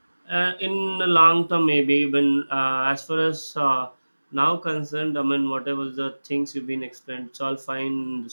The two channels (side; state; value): both; inverted; correlation -1.00